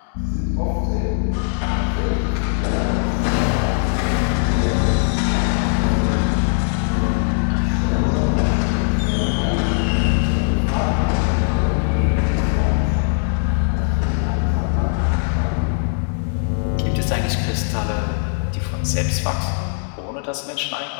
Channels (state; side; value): silent; right; digital silence